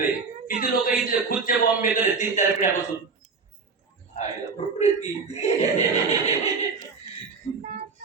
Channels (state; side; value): quieter; left; 4.7 dB